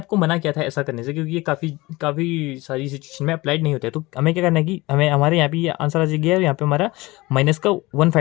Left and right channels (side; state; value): right; quieter; 21.3 dB